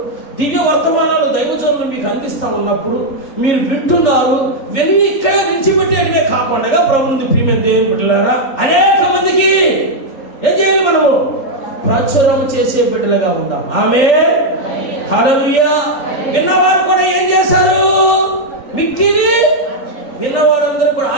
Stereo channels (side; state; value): right; late; 3.4 ms